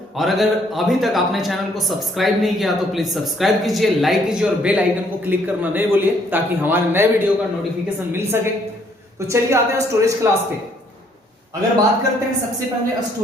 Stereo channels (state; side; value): normal; both; correlation 0.66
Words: और अगर अभी तक आपने चैनल को सब्सक्राइब नहीं किया तो प्लीज सब्सक्राइब कीजिए, लाइक कीजिए और बेल आइकन को क्लिक करना नहीं भूलिए ताकि हमारे नए वीडियो का नोटिफिकेशन मिल सके। तो चलिए आते हैं स्टोरेज क्लास पे। अगर बात करते हैं सबसे पहले